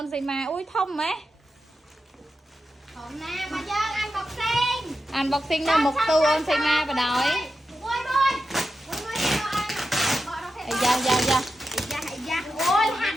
នសីមាអ៊ុយធំហ៎ ហមណាមកយើងអានបកសេង unboxing នៅមុខទូអូនសីមាបដ ாய் មួយអាយ៉ាយ៉ាយ៉ា អូយហាត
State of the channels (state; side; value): normal; both; correlation 0.90